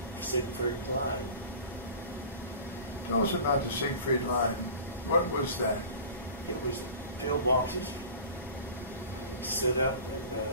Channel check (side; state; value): both; inverted; correlation -0.40